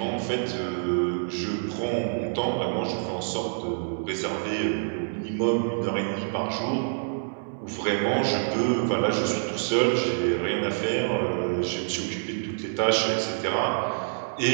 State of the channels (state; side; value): silent; left; 60 dB below the other